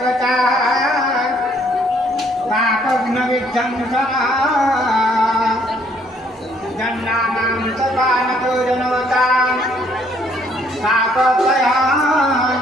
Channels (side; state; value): both; normal; correlation 0.65